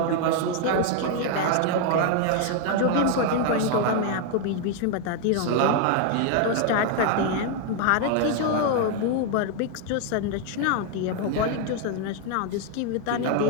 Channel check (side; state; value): both; different; correlation 0.00